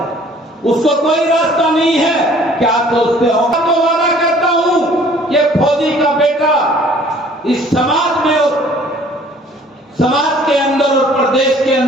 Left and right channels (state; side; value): normal; both; correlation 0.54